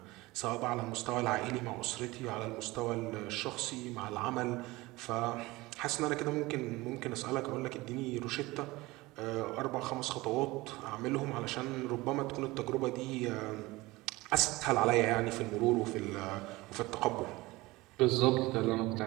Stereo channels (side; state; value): left; quieter; 20.7 dB